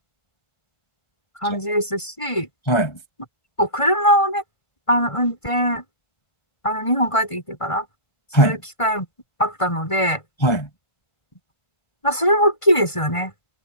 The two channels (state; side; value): late; right; 1.5 ms